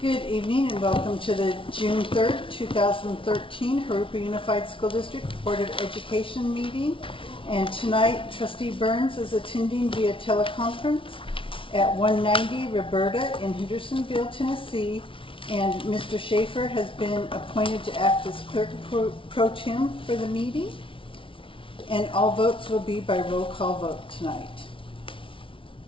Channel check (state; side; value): late; right; 0.25 ms